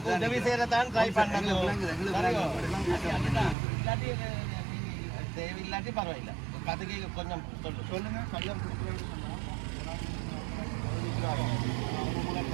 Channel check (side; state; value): left; drops out; at 3.6 s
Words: உதவி செய்யறதான் ட்ரை பண்ணாங்க. இல்லாட்டி தேவையில்லாட்டி பரவாயில்ல. கதைக்கு கொஞ்சம் சொல்லுங்க. கல்யாணம்